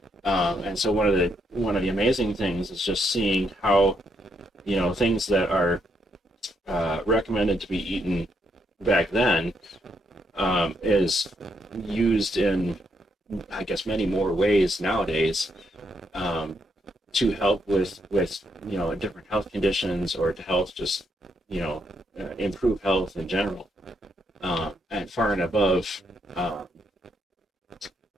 And so one of the amazing things is just seeing how things that are recommended to be eaten back then is used in, I guess, many more ways nowadays, to help with different health conditions, or to help just improve health in general, and far and above um,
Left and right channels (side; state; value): both; normal; correlation 0.77